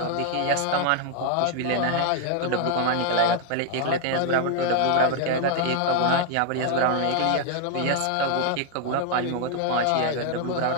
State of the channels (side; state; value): both; different; correlation 0.00